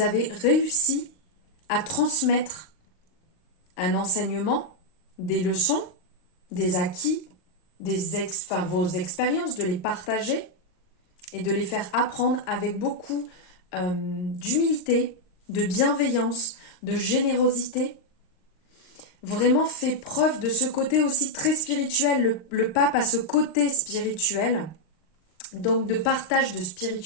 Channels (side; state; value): right; late; 39 ms